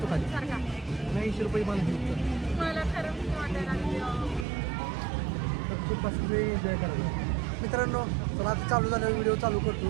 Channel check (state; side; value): drops out; left; at 4.5 s